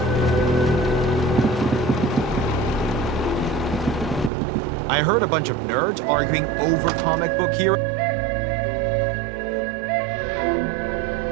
I heard a bunch of nerds arguing over comic book heroes.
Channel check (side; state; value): left; drops out; at 4.3 s